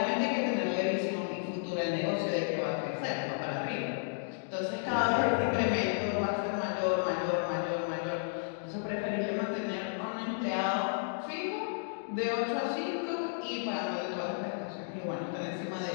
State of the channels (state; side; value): silent; right; digital silence